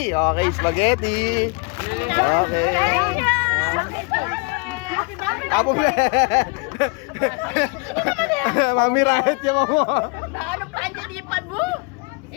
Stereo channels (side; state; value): right; quieter; 30.4 dB